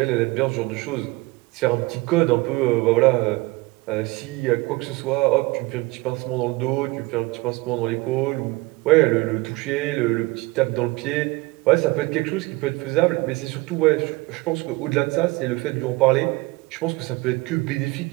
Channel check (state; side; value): quieter; left; 22.4 dB